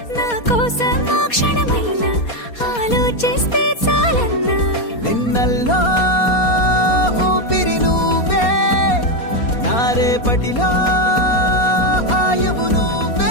నా కోసం ఆ క్షణమైన ఆలోచిస్తే చాలన్నా నిన్నల్లో ఊపిరి నువ్వే నా రేపటిలో ఆయువు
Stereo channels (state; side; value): late; right; 4.2 ms